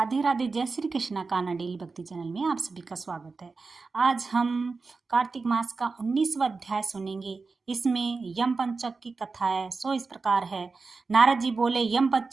राधे। जय श्री कृष्णा। कान्हा डेली भक्ति चैनल में आप सभी का स्वागत है। आज हम कार्तिक मास का 19वां अध्याय सुनेंगे। इसमें यम पंचक की कथा है। सो इस प्रकार है। नारद जी बोले, यम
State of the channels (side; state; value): left; quieter; 4.2 dB